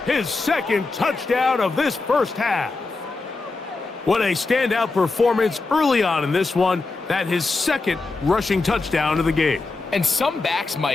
His 2nd touchdown of this first half. What a standout performance early on in this one. That his 2nd rushing touchdown of the game. And some backs,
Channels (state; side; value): quieter; right; 3.6 dB